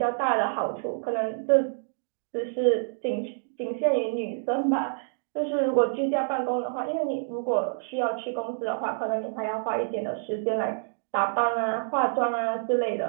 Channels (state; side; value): silent; left; digital silence